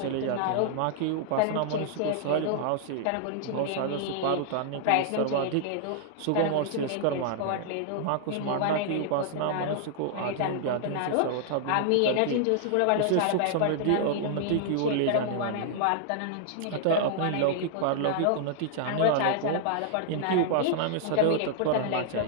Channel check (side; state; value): both; different; correlation -0.01